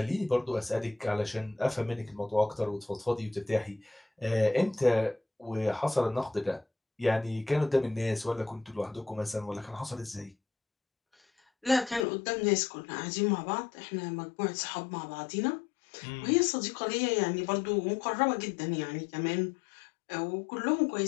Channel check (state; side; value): drops out; right; at 12.1 s